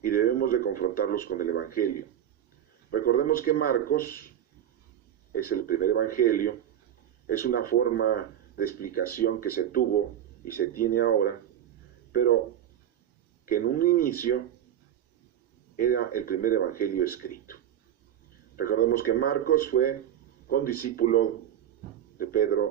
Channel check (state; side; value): quieter; left; 10.6 dB